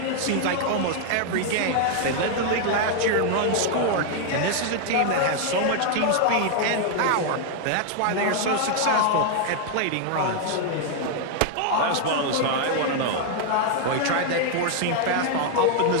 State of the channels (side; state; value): both; different; correlation 0.00